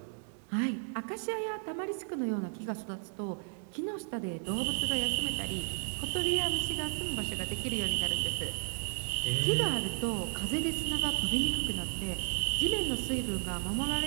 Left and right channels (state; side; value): silent; left; 55 dB below the other